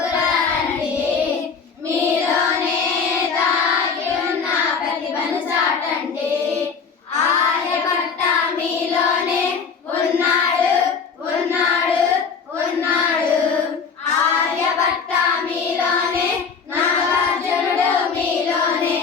రండి, మీలోనే దాగి ఉన్న ప్రతిభను చాటండి. ఆర్యభట్ట మీలోనే ఉన్నాడు ఉన్నాడు ఉన్నాడు, ఆర్యభట్ట మీలోనే, నాగార్జునుడు మీలోనే,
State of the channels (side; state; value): right; quieter; 5.7 dB